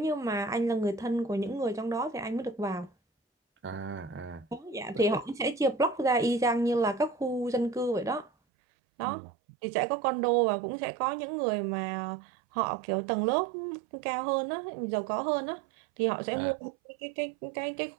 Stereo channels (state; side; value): drops out; left; at 8.3 s